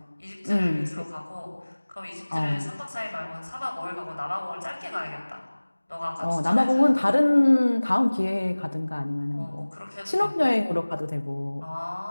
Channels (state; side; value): inverted; both; correlation -1.00